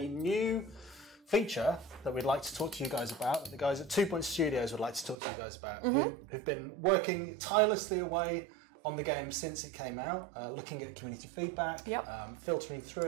new feature that we'd like to talk to you guys about. The guys at 2 Point Studios would like to talk to you guys about who've been working tirelessly away on the game since it came out, looking at community feedback, filtering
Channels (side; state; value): left; drops out; at 5.2 s